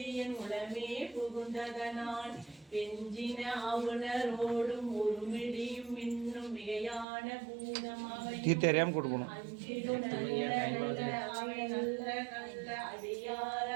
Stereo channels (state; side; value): drops out; left; at 7.1 s